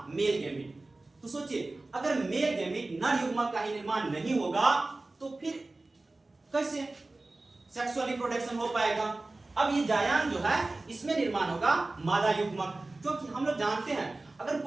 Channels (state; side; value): quieter; left; 3.1 dB